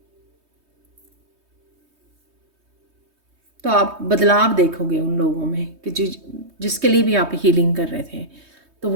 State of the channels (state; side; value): late; left; 3.2 ms